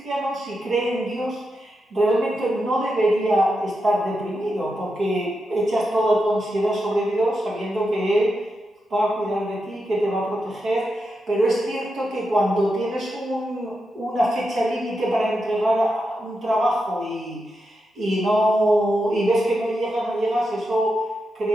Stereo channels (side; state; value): both; normal; correlation 0.87